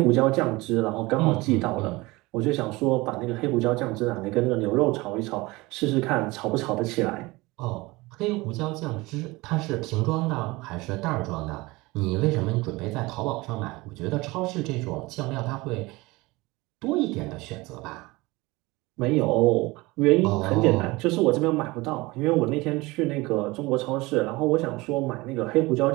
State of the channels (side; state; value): left; quieter; 22.1 dB